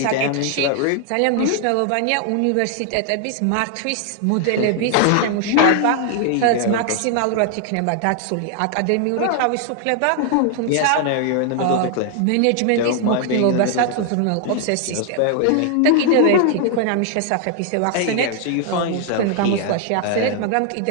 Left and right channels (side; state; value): both; different; correlation 0.00